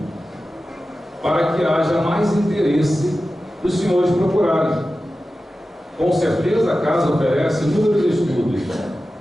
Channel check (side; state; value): both; normal; correlation 0.94